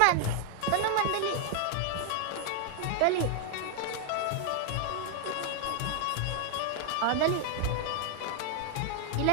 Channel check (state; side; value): different; both; correlation 0.00